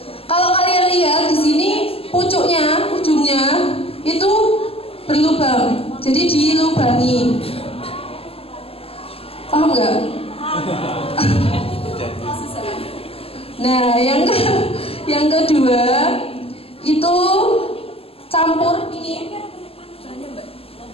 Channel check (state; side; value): late; right; 0.28 ms